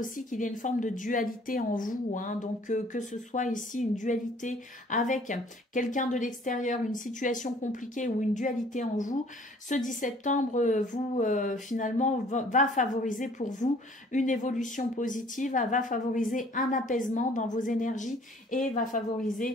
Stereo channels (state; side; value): normal; both; correlation 0.55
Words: qu'il y a une forme de dualité en vous. Hein. Donc, que ce soit ici une dualité avec quelqu'un de l'extérieur, une situation compliquée ou une dualité en vous, ce 10 septembre, finalement, va favoriser pour vous une évolution positive, va favoriser un apaisement dans vos énergies et va